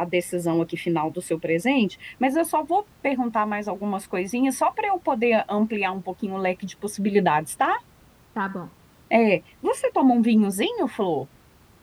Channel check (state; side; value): identical; both; correlation 1.00